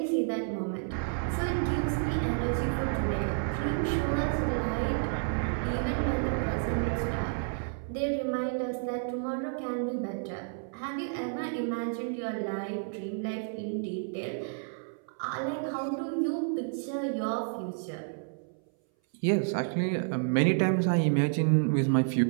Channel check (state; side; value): silent; left; 57 dB below the other